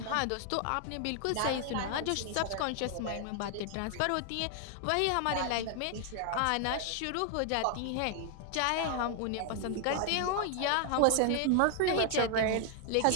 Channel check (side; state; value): both; different; correlation 0.00